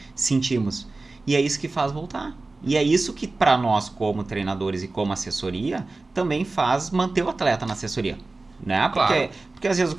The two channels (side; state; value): left; quieter; 3.4 dB